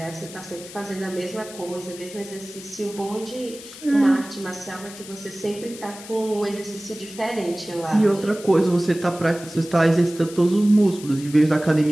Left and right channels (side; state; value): left; noise; hiss, 15 dB below the sound